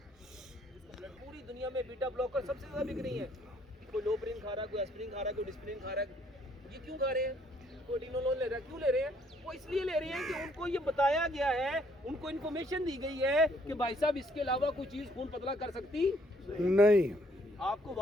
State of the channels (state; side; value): normal; both; correlation 0.66